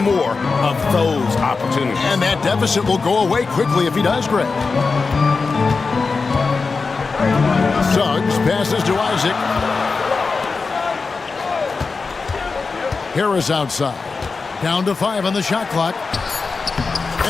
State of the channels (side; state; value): right; quieter; 4.4 dB